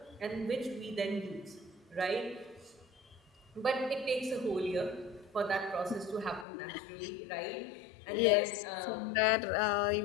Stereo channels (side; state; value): right; drops out; at 6.5 s